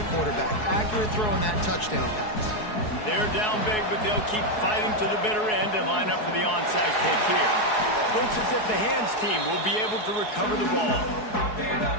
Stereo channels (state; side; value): late; right; 4.7 ms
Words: quarterback. Accurate throw on that touchdown pass. They're down big, but they'll keep fighting to the bitter end and line up for the onside kick here. Looks as if the hands team will be able to recover the ball.